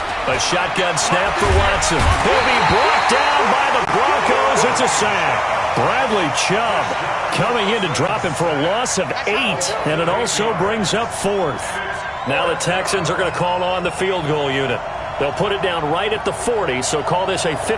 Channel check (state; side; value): identical; both; correlation 1.00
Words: A shotgun snap for Watson. He'll be brought down by the Broncos. It's a sack. Bradley Chubb coming in to drop him for a loss of 8, and it also brings up 4th. Now the Texans are going to call on the field goal unit. They'll put it down right at the 40, so call this a